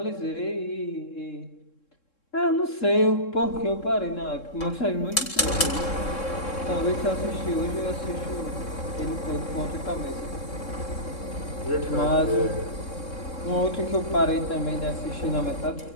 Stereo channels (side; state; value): right; late; 3.7 ms